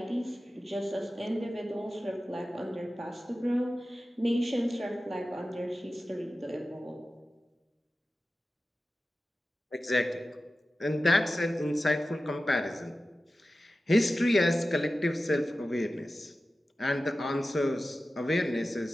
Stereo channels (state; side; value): normal; both; correlation 0.94